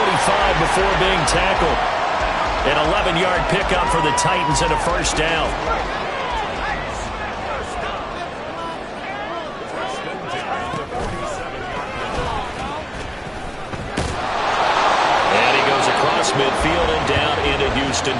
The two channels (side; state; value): both; identical; correlation 1.00